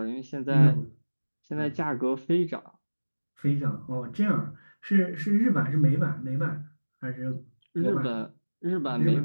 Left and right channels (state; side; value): inverted; both; correlation -1.00